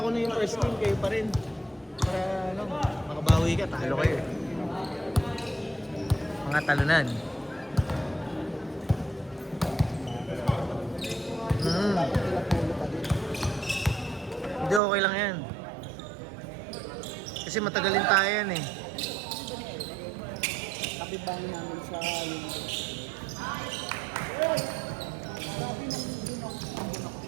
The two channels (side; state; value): left; drops out; at 14.8 s